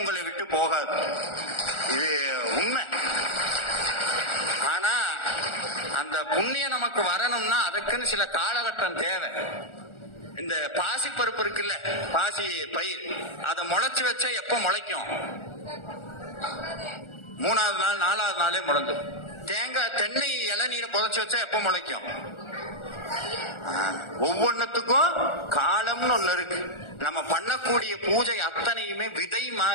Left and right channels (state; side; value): late; right; 1.4 ms